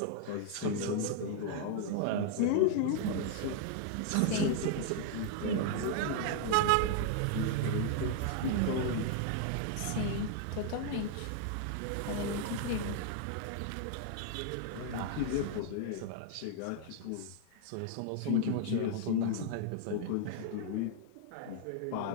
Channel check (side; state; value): both; different; correlation 0.00